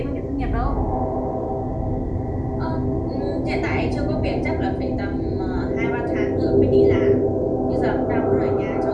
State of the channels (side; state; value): both; identical; correlation 1.00